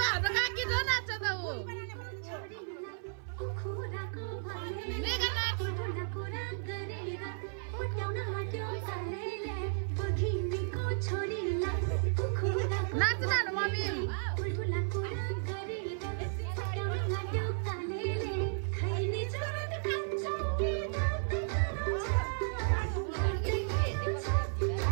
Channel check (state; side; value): silent; left; 55 dB below the other